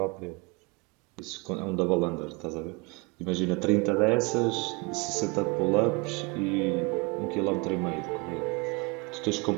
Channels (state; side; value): quieter; left; 28.7 dB